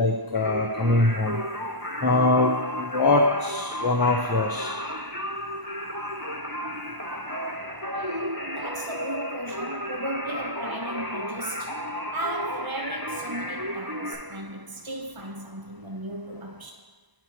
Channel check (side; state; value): left; late; 1.0 ms